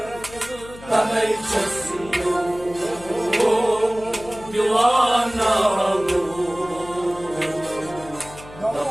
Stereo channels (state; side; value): noise; left; hum, 18 dB below the sound